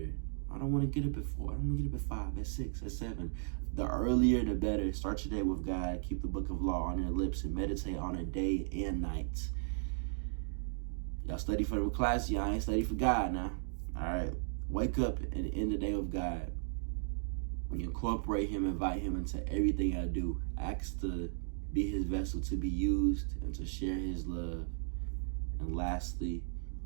I don't want to get up at 4. I don't want to get up at 5, at 6, at 7. The earlier the better. Start your day with God. Keep the book of law on your lips and meditate on it day and night. Y'all study for the class. Y'all ain't study for God now. All right. Wake up and end the day with God. When you incorporate Him, invite Him into everything I do. Ask to be His vessel to be used and to share His love. And lastly,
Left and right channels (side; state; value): left; silent; digital silence